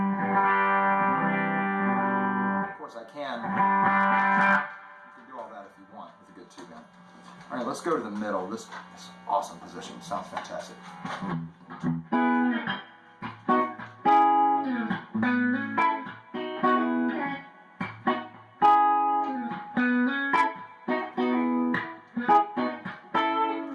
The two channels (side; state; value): both; identical; correlation 1.00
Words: Of course you can do all that if you want with a good tube amp. All right, let's go to the middle. This is awesome position. Sounds fantastic.